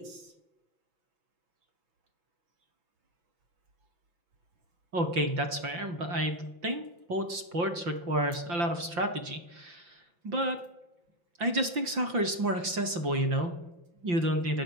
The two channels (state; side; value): late; left; 5.8 ms